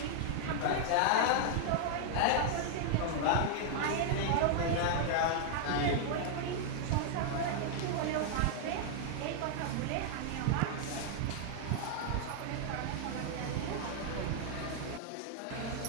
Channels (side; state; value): both; different; correlation -0.01